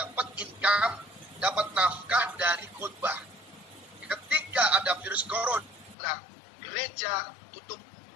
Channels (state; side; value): drops out; right; at 6.0 s